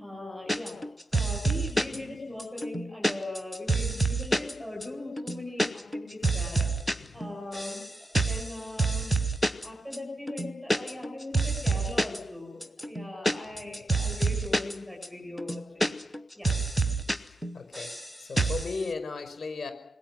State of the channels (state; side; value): normal; both; correlation 0.86